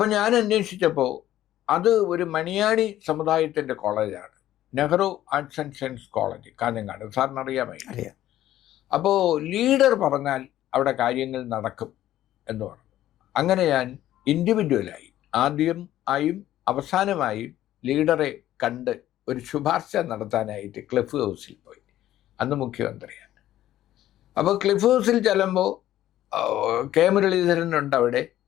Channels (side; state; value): right; quieter; 13.3 dB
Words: ഞാൻ അന്വേഷിച്ചപ്പോൾ അത് ഒരു മണിയാണി സമുദായത്തിൻ്റെ കോളേജാണ്, Nehru arts and science college, Kanhangad. സാറിന് അറിയാമോ? അപ്പോൾ ലീഡർ പറഞ്ഞാൽ അവിടെ കാര്യങ്ങൾ നടക്കും എന്ന് പറഞ്ഞു. അങ്ങനെ ഞാൻ ഇൻഡിവിജ്വലായി ആദ്യമായും അവസാനമായും ലീഡറെ കണ്ട് ഒരു ശുപാർശ നടത്താനായിട്ട് ക്ലിഫ് ഹൗസിൽ പോയി. അന്ന് മുഖ്യമന്ത്രിയാണ്. അപ്പോൾ ക്ലിഫ് ഹൗസിൽ ചെല്ലുമ്പോൾ കെ മുരളീധരനുണ്ട്, അവിടെ